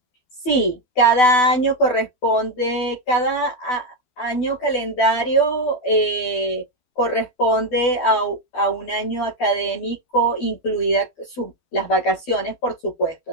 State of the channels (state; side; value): late; right; 12 ms